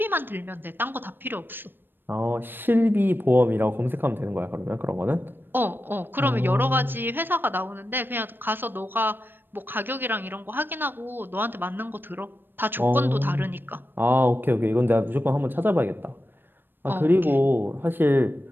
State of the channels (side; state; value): left; late; 0.096 ms